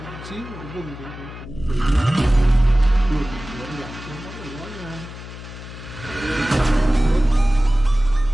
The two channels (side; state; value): left; noise; hum, 13 dB below the sound